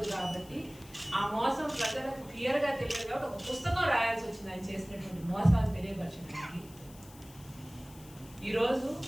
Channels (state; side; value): noise; left; hiss, 21 dB below the sound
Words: కాబట్టి ఆ మోసం ప్రజలకు క్లియర్గా తెలియదు కాబట్టి ఒక పుస్తకం రాయాల్సి వచ్చింది ఆయన చేసినటువంటి మోసాలు తెలియపరచడానికి. ఈరోజు